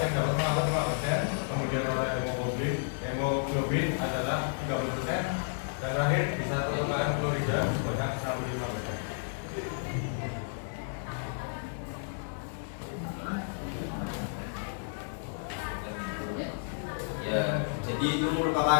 dapat mengangkut 5%, kemudian oleh hemoglobin adalah 30%, dan terakhir bisa pertukaran klorida sebanyak 65%. Ya, jadi itu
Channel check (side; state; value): right; silent; digital silence